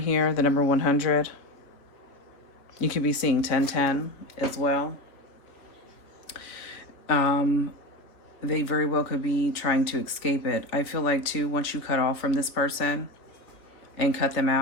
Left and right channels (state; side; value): late; right; 3.1 ms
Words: the number 100, you could be seeing 1010 as well. They very well could be trying to escape it. I feel like too, once you cut off from this person and cut them